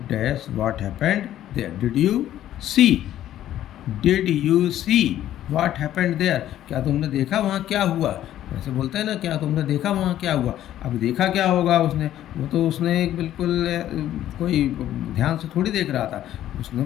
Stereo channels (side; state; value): right; quieter; 12.3 dB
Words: dash what happened there. Did you see what happened there, क्या तुमने देखा वहाँ क्या हुआ? ऐसे बोलते हैं ना, क्या तुमने देखा वहाँ क्या हुआ? अब देखा क्या होगा उसने? वो तो उसने एक बिल्कुल कोई ध्यान से थोड़ी देख रहा था, उसने